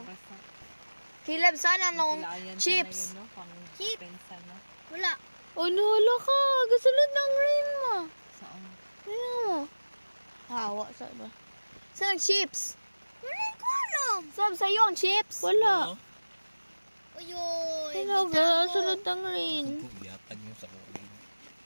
mabasa. Kilab, sana nung Kailangan chips. sana yun, no? Pang Chip. pensa, no? Wala. Oh, nahala ka. Gasulod ng rain mo. Saan? Ayan mo. Hawa, saan ba? Saan ang chips? Wala ko alam. Sab, sa'yo ang chips? Wala. Uyoy. Hello, guys. Gasulod ng rain. Yatag nyo sa kulit.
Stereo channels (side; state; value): both; inverted; correlation -1.00